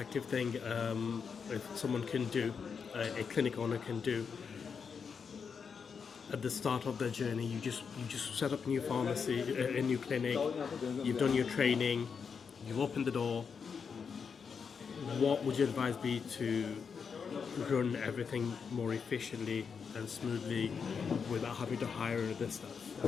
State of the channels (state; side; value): quieter; right; 6.1 dB